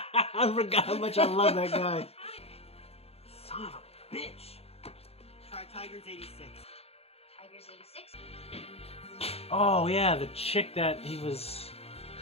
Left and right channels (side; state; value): right; late; 0.29 ms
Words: forgot how much I love that guy. Son of a bitch. Try Tigers 86. Tigers 86? Oh, yeah, the chick that he was...